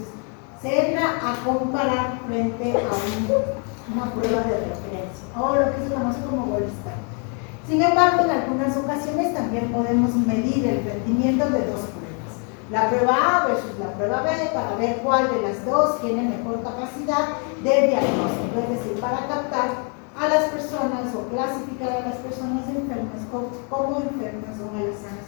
se entra a comparar frente a una prueba de referencia, o lo que se conoce como gold standard. Sin embargo, en algunas ocasiones también podemos medir el rendimiento de dos pruebas, la prueba A versus la prueba B, para ver cuál de las dos tiene mejor capacidad de diagnóstico, es decir, para captar a las personas o clasificar a las personas enfermas como enfermas o a las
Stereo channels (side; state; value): right; quieter; 38.7 dB